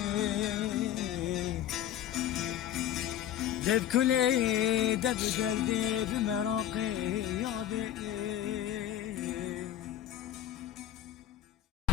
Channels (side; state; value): right; quieter; 11.4 dB